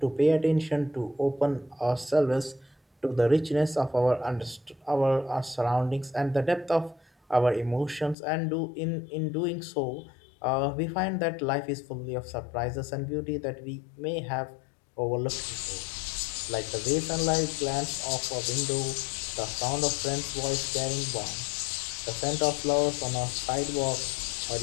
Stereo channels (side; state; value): right; drops out; at 8.2 s